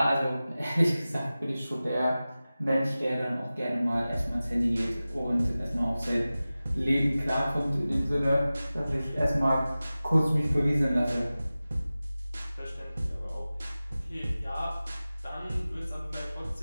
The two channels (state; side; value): inverted; both; correlation -0.97